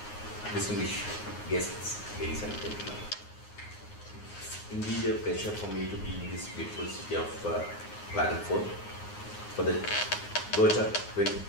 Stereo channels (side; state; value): right; late; 9.6 ms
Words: distinguished guests, ladies and gentlemen. It's indeed a pleasure for me to be in this beautiful city of Klagenfurt for the